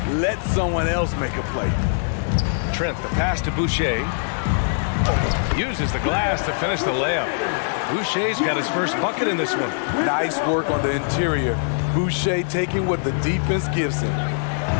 Let someone else make a play. Trent, the pass to Boucher. Uses the glass to finish the layup. Boucher's got his first bucket in this one. Nice work on the interior. Boucher taking what the defense gives him.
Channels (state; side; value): silent; right; digital silence